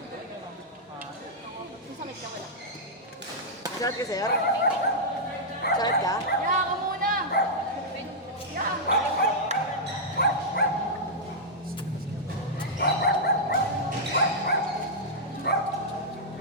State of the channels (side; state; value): both; normal; correlation -0.08